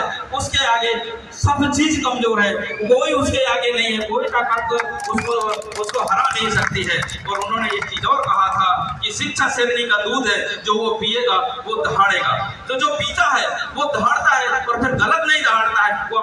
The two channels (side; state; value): both; identical; correlation 1.00